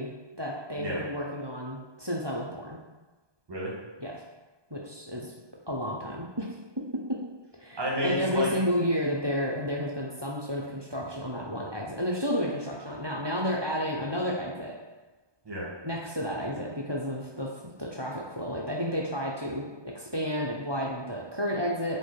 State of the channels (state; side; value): late; left; 1.2 ms